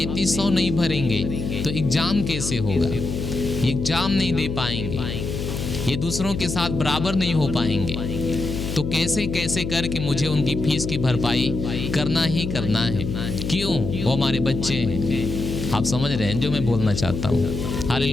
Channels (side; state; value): left; noise; hum, 4 dB below the sound